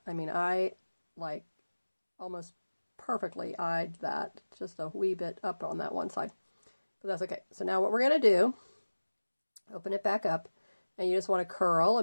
I mean, I like almost perfectly eyed that, just a wee bit up on that one side, but that's okay. So now what we're going to do, open it back up, and you just want to curl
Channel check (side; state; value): both; inverted; correlation -1.00